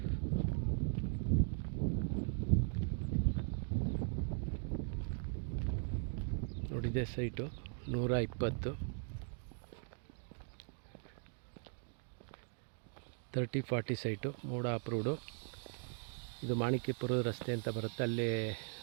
ನೋಡಿದೆ ಸೈಟು 120 30-40 ಸೈಟು, ಮೂಡ ಅಪ್ರೂವ್ಡು. ಇದು ಮಾಣಿಕ್ಯಪುರದ ರಸ್ತೆ ಅಂತ ಬರುತ್ತೆ, ಅಲ್ಲೇ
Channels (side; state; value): left; silent; 51 dB below the other